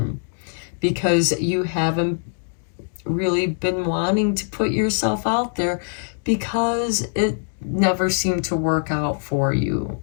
because you haven't really been wanting to put yourself out there because it never seemed to work out for you.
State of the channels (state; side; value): silent; right; 64 dB below the other